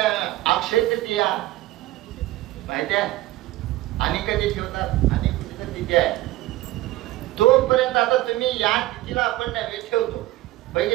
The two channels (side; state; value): left; quieter; 16.9 dB